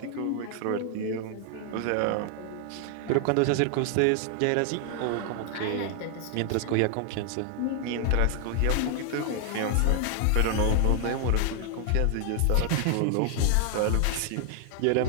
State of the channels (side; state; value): both; different; correlation 0.00